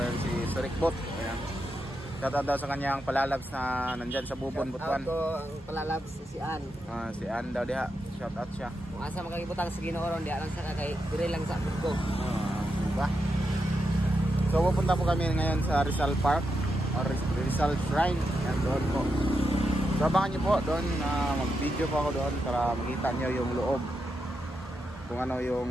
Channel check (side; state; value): both; normal; correlation 0.85